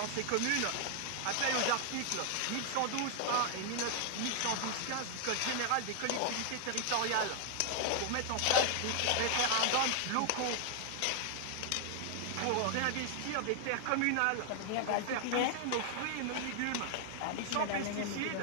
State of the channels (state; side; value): different; both; correlation 0.00